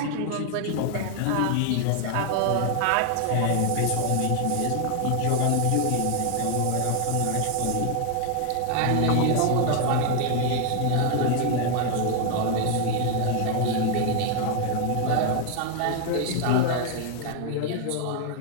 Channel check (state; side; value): different; both; correlation 0.00